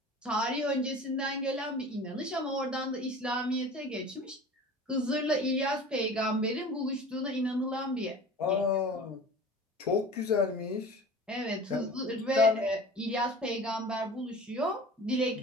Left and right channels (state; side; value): normal; both; correlation 0.40